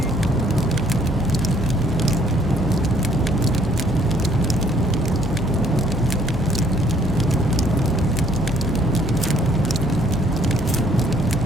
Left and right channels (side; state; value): both; normal; correlation 0.62